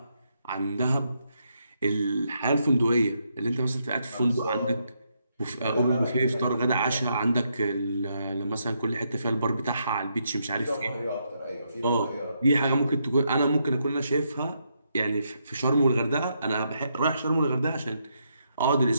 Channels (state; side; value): inverted; both; correlation -0.79